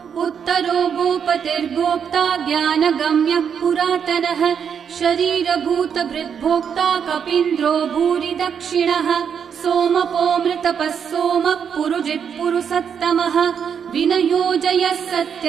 उत्तरो गोपतिर्गोप्ता ज्ञानगम्यः पुरातनः शरीरभूतभृद्भोक्ता कपीन्द्रो भूरि दक्षिणः सोमपोऽमृतपः सोमः पुरुजित्पुरुसत्तमः विनयोजयः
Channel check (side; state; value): left; quieter; 7.5 dB